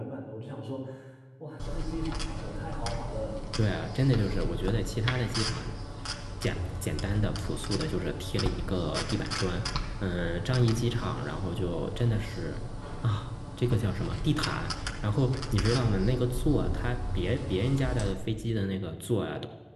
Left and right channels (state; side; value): identical; both; correlation 1.00